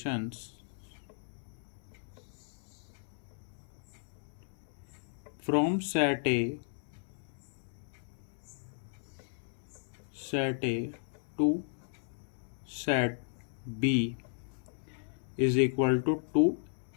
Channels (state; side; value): silent; right; 54 dB below the other